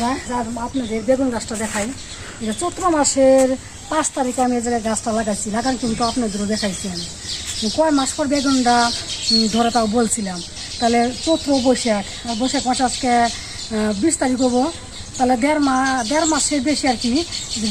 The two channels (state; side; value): identical; both; correlation 1.00